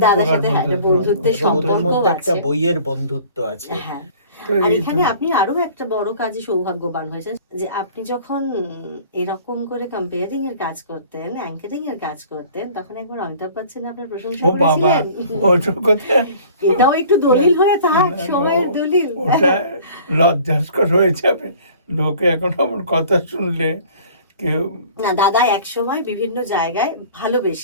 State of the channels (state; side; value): inverted; both; correlation -0.48